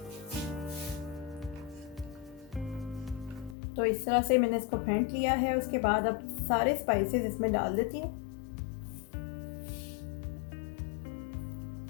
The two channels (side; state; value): right; drops out; at 3.6 s